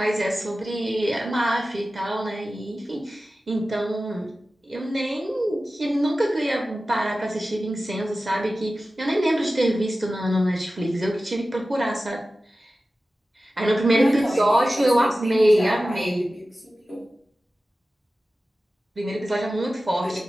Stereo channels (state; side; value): normal; both; correlation 0.95